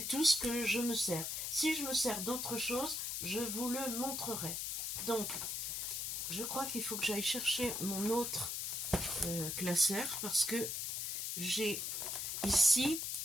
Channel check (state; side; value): noise; left; hiss, 2 dB below the sound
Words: tout ce que je me sers. Si je me sers d'autre chose, je vous le montrerai. Donc, je crois qu'il faut que j'aille chercher mon autre classeur parce que j'ai ici